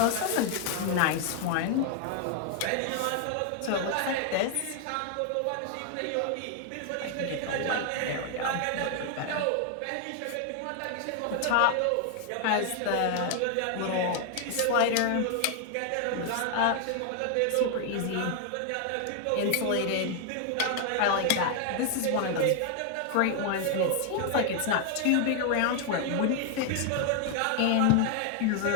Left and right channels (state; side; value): different; both; correlation 0.00